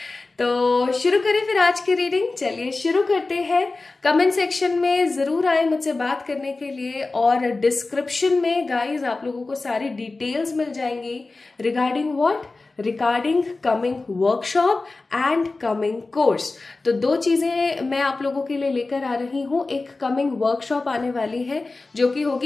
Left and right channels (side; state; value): right; quieter; 3.5 dB